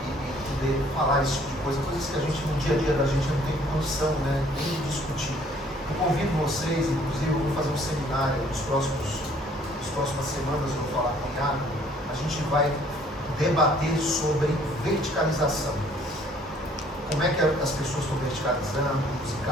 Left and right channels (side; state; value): both; normal; correlation 0.59